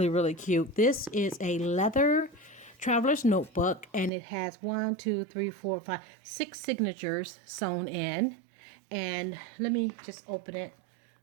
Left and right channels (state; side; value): drops out; left; at 4.1 s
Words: really cute. This is a leather traveler's notebook, and it has 6 signatures sewn in. And let me just open it.